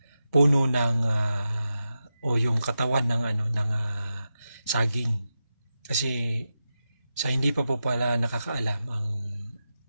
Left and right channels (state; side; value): inverted; both; correlation -0.90